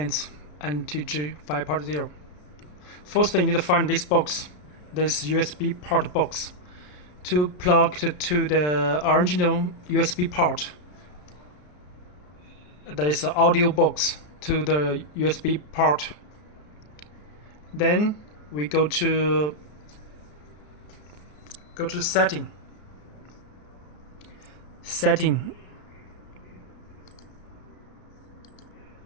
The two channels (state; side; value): late; right; 33 ms